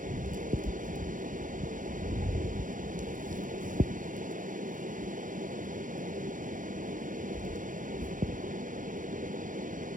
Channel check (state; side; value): late; left; 0.38 ms